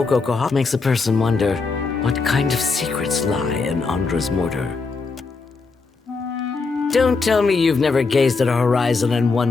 Kahara. Makes a person wonder what kind of secrets lie in Andra's mortar. Don't tell me you've never gazed at a horizon and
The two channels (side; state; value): right; quieter; 4.3 dB